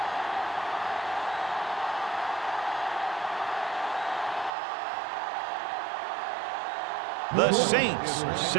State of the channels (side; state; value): left; drops out; at 4.5 s